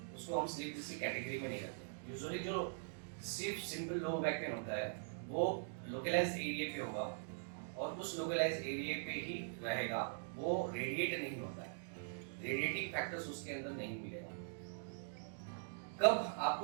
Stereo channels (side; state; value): left; silent; digital silence